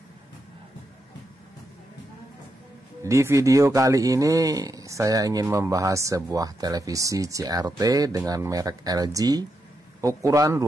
Di video kali ini saya ingin membahas sebuah televisi CRT dengan merek LG, ukuran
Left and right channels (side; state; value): both; normal; correlation 0.84